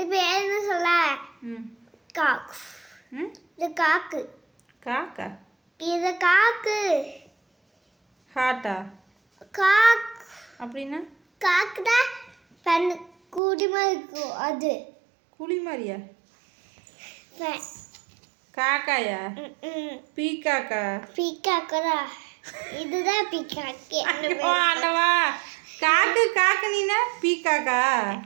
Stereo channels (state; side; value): drops out; left; at 13.4 s